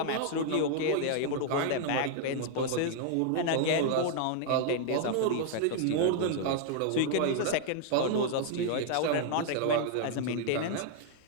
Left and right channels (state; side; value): different; both; correlation 0.00